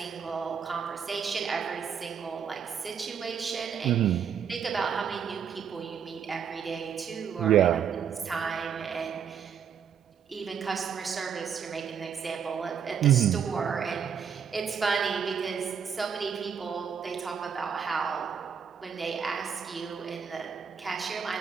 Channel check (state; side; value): quieter; left; 7.4 dB